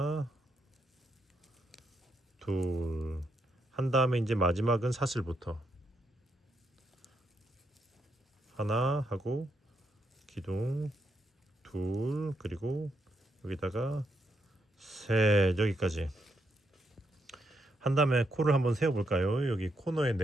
둘, 한 다음에 이제 마지막은 사슬부터 하나 하고 기둥 둘, 그리고 여기다가 셋, 여기까지 한 다음에 코를 한번 세워 볼까요? 여기 코너에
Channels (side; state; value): both; normal; correlation 0.79